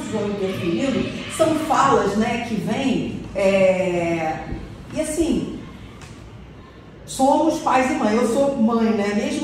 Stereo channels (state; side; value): identical; both; correlation 1.00